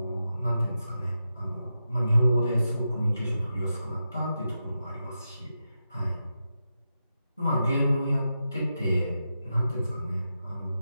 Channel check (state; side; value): inverted; both; correlation -0.88